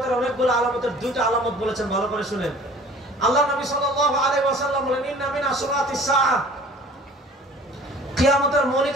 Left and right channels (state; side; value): normal; both; correlation 0.48